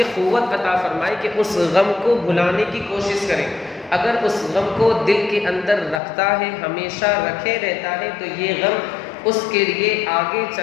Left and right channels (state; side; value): drops out; right; at 6.0 s